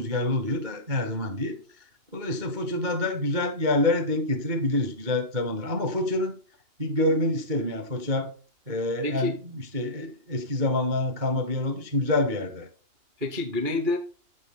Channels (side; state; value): left; late; 2.8 ms